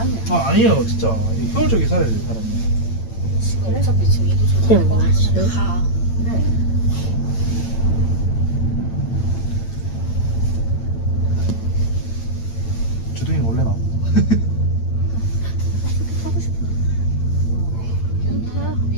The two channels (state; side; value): late; right; 8.9 ms